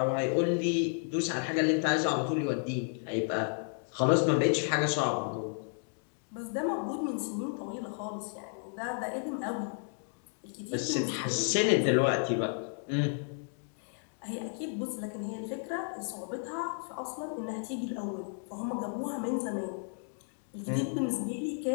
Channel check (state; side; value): silent; right; 56 dB below the other